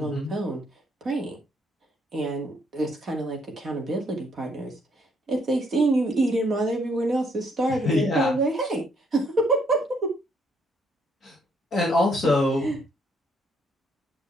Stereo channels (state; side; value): normal; both; correlation 0.70